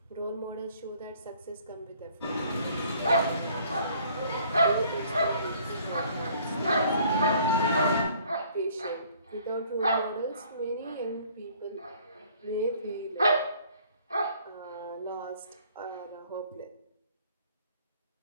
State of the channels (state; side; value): inverted; both; correlation -0.58